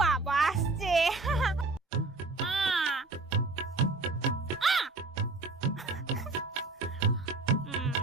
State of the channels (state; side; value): quieter; left; 3.4 dB